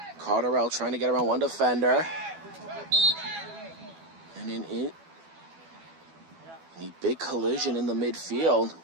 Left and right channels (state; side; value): late; left; 12 ms